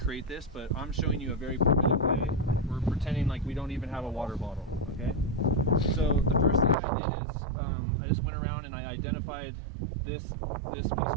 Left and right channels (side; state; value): left; drops out; at 6.8 s